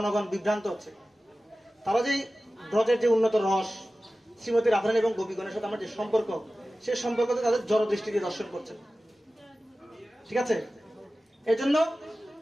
বিভ্রান্ত হচ্ছে। তারা যে ব্রজের যে উন্নত রস, শ্রীমতী রাধারানী এবং গোপীগণের সাথে আমার যে সম্পর্ক, সেই সম্পর্কতে তাদের জড় দৃষ্টি দিয়ে দর্শন করছেন। ঠিক আছে, এই জন্য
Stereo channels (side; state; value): both; normal; correlation 0.95